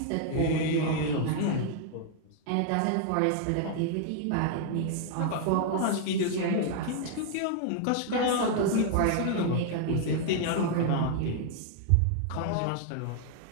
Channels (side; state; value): both; different; correlation 0.00